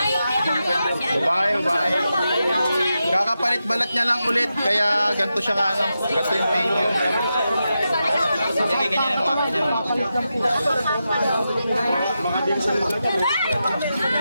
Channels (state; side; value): inverted; both; correlation -0.89